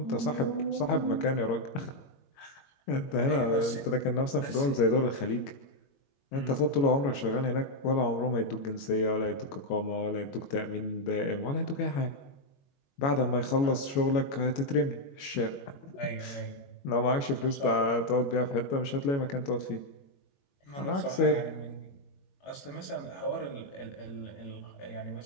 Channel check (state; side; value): late; right; 22 ms